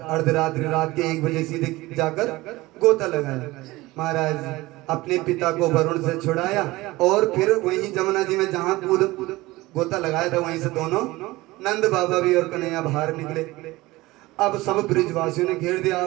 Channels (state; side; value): quieter; left; 19.8 dB